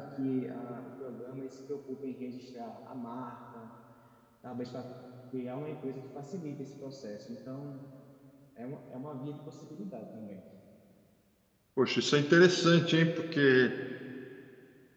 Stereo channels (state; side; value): identical; both; correlation 1.00